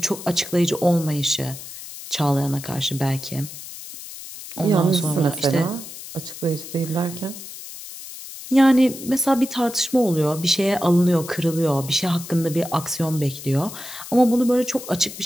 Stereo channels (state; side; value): noise; left; hiss, 13 dB below the sound